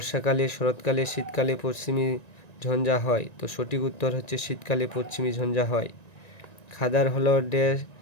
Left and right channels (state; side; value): late; right; 1.9 ms